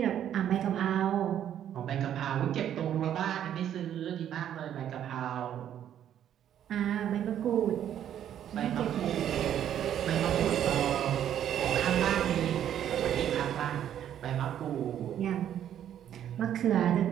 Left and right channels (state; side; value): quieter; left; 10.3 dB